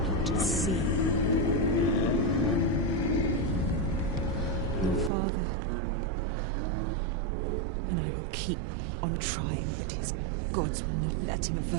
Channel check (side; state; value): left; drops out; at 5.1 s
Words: see. Your father and I will keep on trying, but his gods will not let him